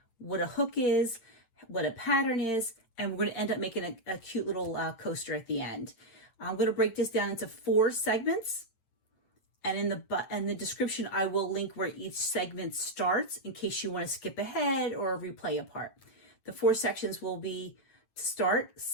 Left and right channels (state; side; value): late; right; 8.8 ms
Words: what a hook is, what a pattern is, and we're going to end up making a cute little coaster at the end. I'm going to break this down into 4 segments, and in the description I will link where each segment starts in case you want to skip ahead or replay a part. The 4 sections will be: to start,